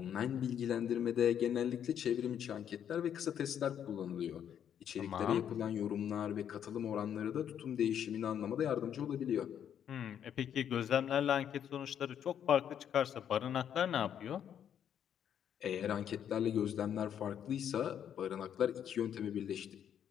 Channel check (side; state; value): right; quieter; 9.2 dB